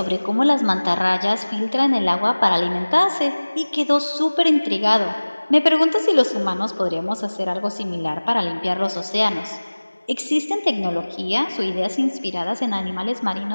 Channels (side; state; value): both; inverted; correlation -1.00